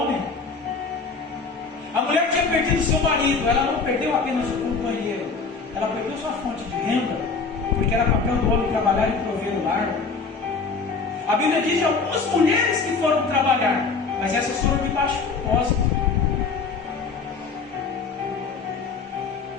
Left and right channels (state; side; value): quieter; right; 4.6 dB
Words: A mulher tinha perdido seu marido. Ela não perdeu apenas o companheiro, ela perdeu sua fonte de renda, porque era papel do homem trabalhar e prover o lar. A Bíblia diz de algumas mulheres que foram trabalhar, mas essas foram de baixo propósito.